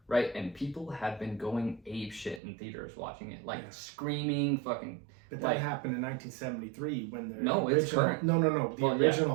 right? And people have been going ape shit in theaters watching it, like screaming, fucking. But that happened in 1973 when the it's current. No. The Well,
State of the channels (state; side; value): drops out; left; at 2.4 s